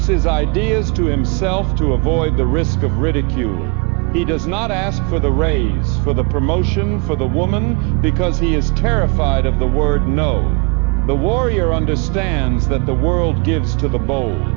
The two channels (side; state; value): left; quieter; 31.5 dB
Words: his ideas to himself to avoid the risk of ridicule. He does not ask for the raise, for the promotion, for the woman, because he is terrified of the word no. The warrior understands that the world gives to the